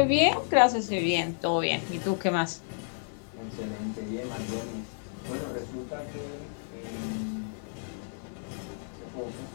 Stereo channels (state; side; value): silent; right; digital silence